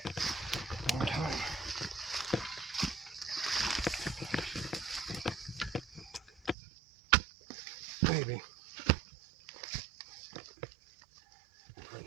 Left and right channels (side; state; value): left; drops out; at 6.6 s